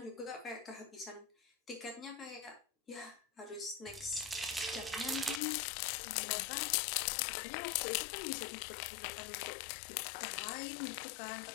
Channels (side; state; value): right; drops out; at 5.4 s